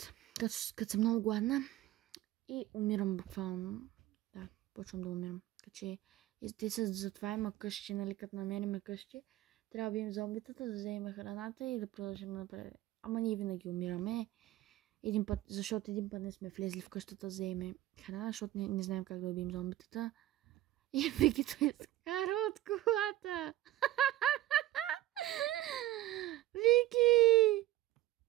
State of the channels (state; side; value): quieter; left; 15.2 dB